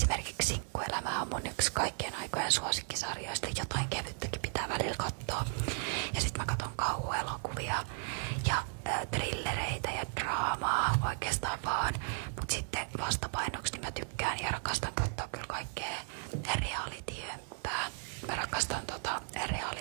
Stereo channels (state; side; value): silent; left; 54 dB below the other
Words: Sinkkuelämä on mun yksi kaikkien aikojen suosikkisarjoista. Jotain kevyttäkin pitää välillä katsoa. Ja sit mä katon kauhuelokuvia ja thrillereitä ja draamaa oikeastaan vaan. Mut sitten vastapainoksi niin mä tykkään ja rakastan katsoa kyllä kaikkea reality-hömpää. Mä rakastan